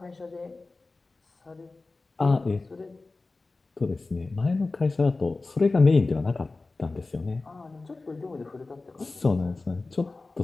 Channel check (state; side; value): quieter; right; 3.5 dB